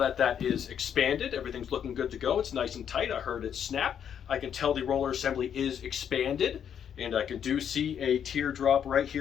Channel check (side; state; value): right; quieter; 8.6 dB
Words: that is expanded, everything's looking good to go. It's nice and tight. I heard it snap. I can tell the roller assembly is expanded, and I do see a teardrop right